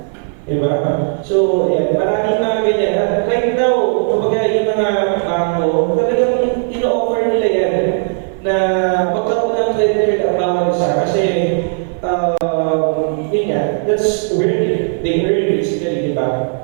Diba? So, yan, maraming mga ganyan. At right now, kapag yung mga bangko, talagang ino-offer nila yan na magkaroon ng credit card ang bawal isa. Kasi, yun nga, that's where they earn basically, diba?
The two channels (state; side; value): silent; left; 57 dB below the other